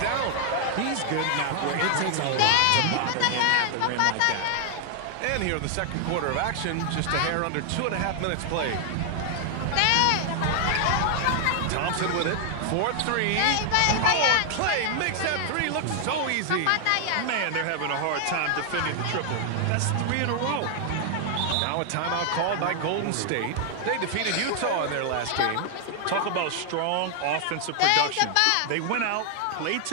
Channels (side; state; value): both; different; correlation 0.00